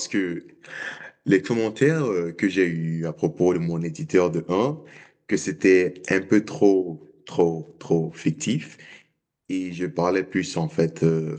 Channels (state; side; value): identical; both; correlation 1.00